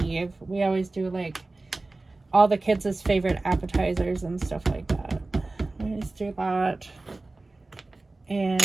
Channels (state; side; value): quieter; left; 3.2 dB